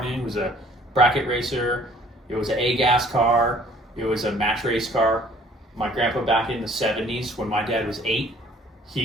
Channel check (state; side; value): normal; both; correlation 0.56